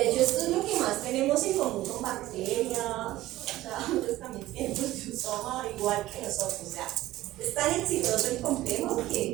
hecho esto es lo que más tenemos en común con bacterias, o sea, ellos también tienen proteosoma igual que nosotros. O sea, es tan exitoso el complejo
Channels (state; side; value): quieter; left; 16.1 dB